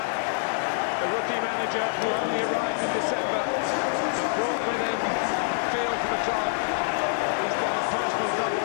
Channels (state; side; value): silent; right; digital silence